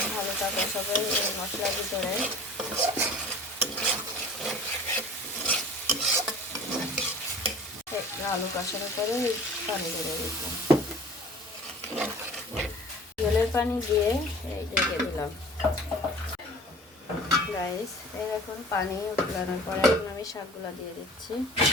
আলুটা কষাবে এই মশলার ভিতরে। আলু কষানোর পরে পানি দিয়ে দিলাম, জলের পানি দিয়ে এই ঢেকে দিলাম। গাইস, এই এখন পানি উঠানোর পরে এখন আমি শাকগুলো দিয়ে দিচ্ছি।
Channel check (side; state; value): both; normal; correlation 0.44